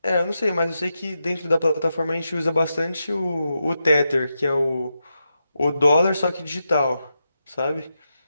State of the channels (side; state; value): both; inverted; correlation -0.87